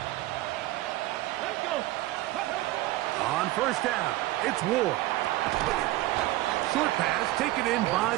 First down, it's Ward. Short pass taken in by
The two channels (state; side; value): quieter; left; 16.8 dB